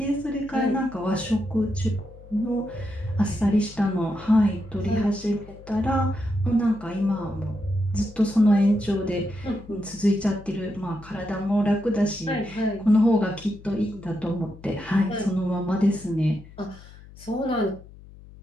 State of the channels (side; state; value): left; noise; hum, 20 dB below the sound